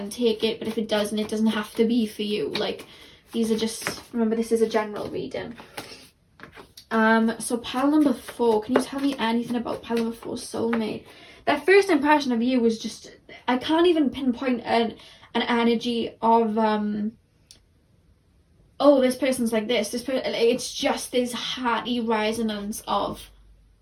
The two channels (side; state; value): both; identical; correlation 1.00